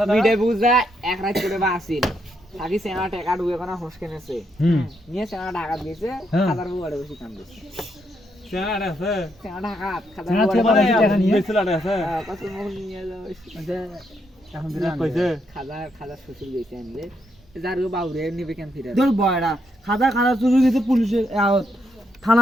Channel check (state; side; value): normal; both; correlation 0.78